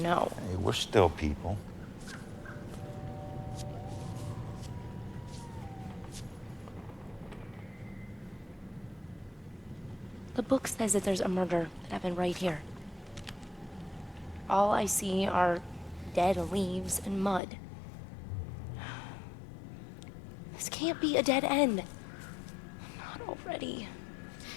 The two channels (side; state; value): right; drops out; at 17.4 s